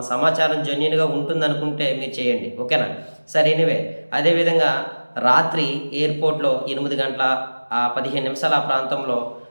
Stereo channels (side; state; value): both; inverted; correlation -1.00